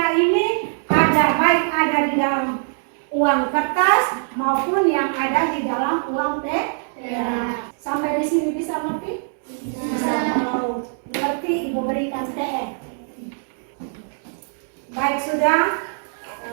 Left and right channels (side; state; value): left; silent; digital silence